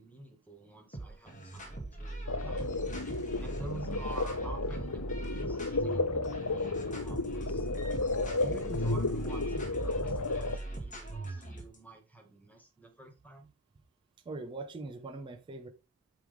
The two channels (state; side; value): normal; both; correlation -0.11